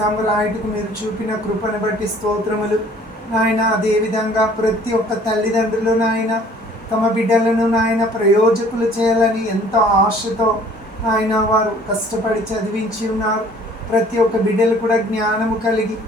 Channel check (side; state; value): both; normal; correlation 0.54